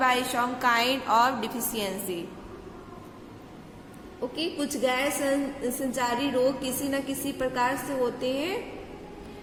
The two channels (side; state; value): both; identical; correlation 1.00